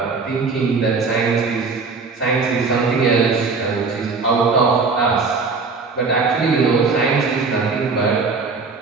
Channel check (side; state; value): left; quieter; 4.4 dB